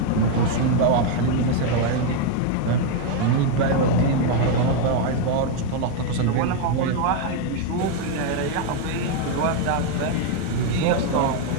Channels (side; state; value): both; different; correlation 0.01